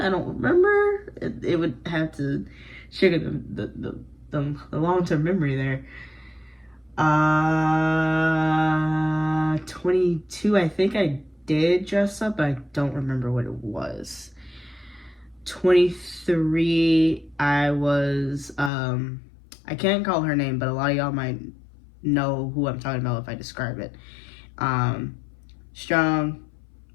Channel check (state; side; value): drops out; right; at 18.7 s